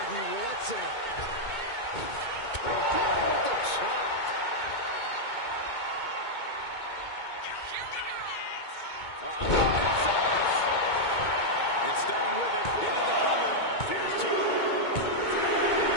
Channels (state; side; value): late; right; 2.2 ms